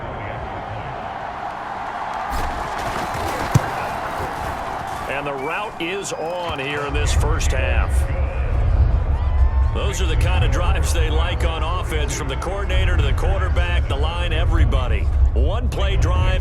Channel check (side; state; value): both; identical; correlation 1.00